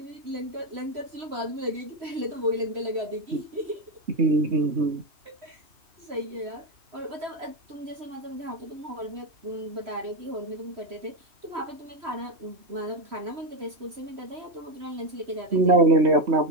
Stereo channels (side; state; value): left; late; 3.0 ms